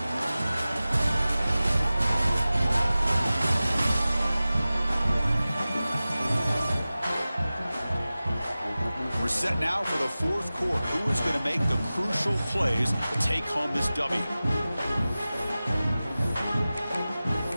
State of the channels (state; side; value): inverted; both; correlation -0.96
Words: We're set now for the fourth quarter. Who is going to make the crucial plays to take home this W?